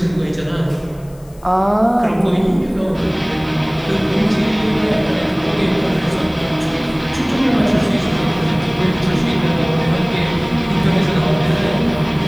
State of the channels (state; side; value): noise; left; hiss, 28 dB below the sound